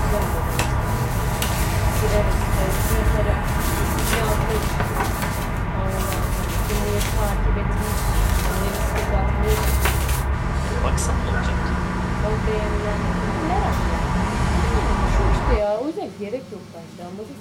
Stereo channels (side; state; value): both; identical; correlation 1.00